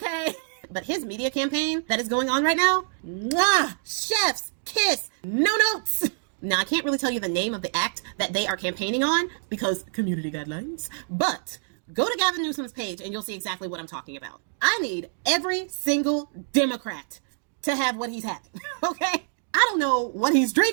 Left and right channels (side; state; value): left; silent; digital silence